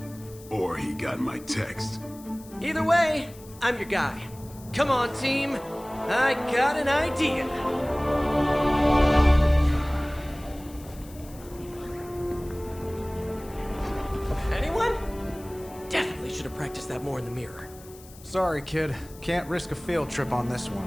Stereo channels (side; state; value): left; noise; hiss, 21 dB below the sound